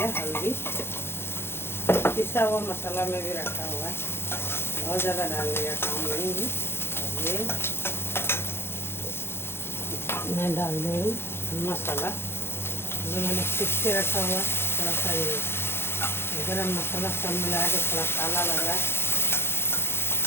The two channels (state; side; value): late; right; 0.11 ms